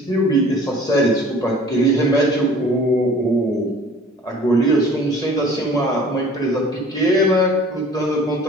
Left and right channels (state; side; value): normal; both; correlation 0.49